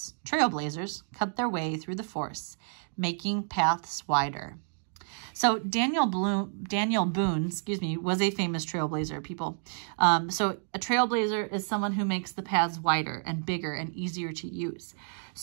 Trailblazers cut their way through the forests, making paths wider. So Daniel Boone, was a famous trailblazer, people. So a trailblazer is someone who makes the paths wider and bigger and easier to use.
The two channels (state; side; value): silent; left; digital silence